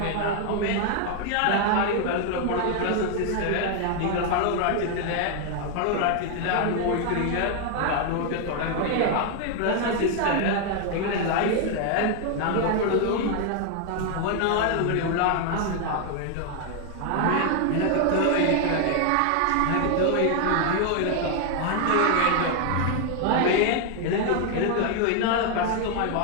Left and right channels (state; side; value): different; both; correlation 0.00